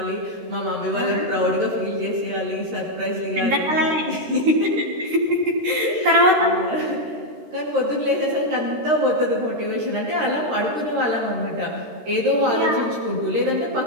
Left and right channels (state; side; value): late; left; 13 ms